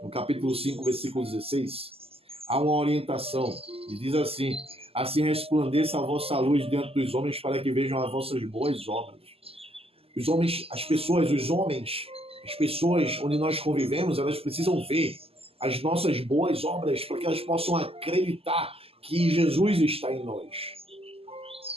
capítulo 5, versículo 16, há uma orientação. E diz assim: assim resplandeça a vossa luz diante dos homens, para que vejam as vossas boas obras. Os homens, as pessoas onde nós convivemos, elas precisam ver as nossas boas obras, para que elas possam acreditar que Jesus está em nós.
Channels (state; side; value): late; left; 0.28 ms